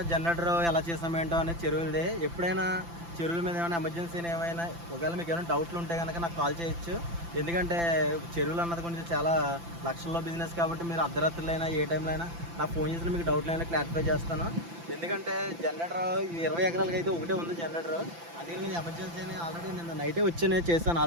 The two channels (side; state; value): left; late; 5.9 ms